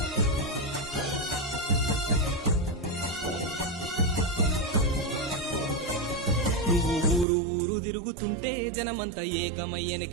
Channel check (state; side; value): drops out; left; at 7.2 s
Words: నువ్వు ఊరు ఊరు తిరుగుతుంటే జనమంతా